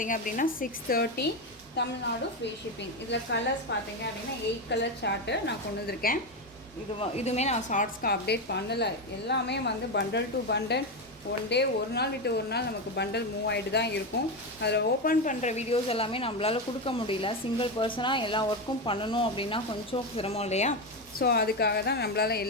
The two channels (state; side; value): normal; both; correlation 0.12